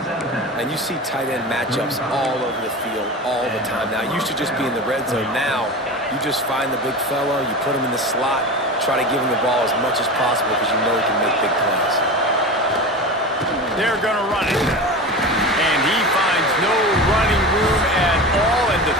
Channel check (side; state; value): both; normal; correlation 0.28